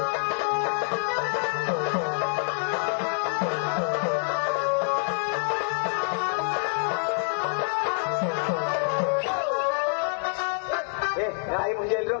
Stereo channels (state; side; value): silent; right; 61 dB below the other